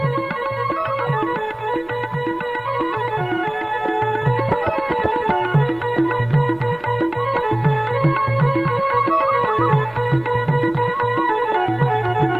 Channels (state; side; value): noise; right; rumble, 27 dB below the sound